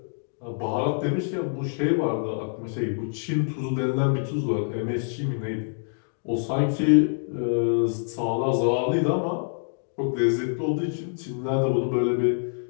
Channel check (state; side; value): silent; right; digital silence